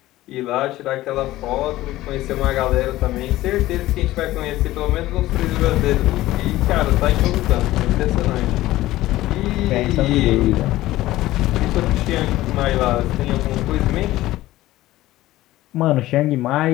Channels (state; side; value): quieter; right; 16.2 dB